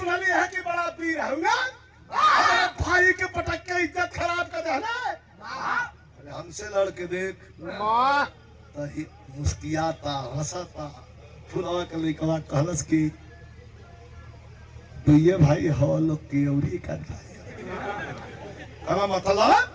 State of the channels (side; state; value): both; identical; correlation 1.00